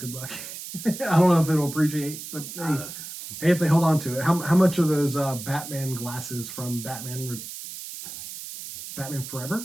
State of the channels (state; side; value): noise; right; hiss, 10 dB below the sound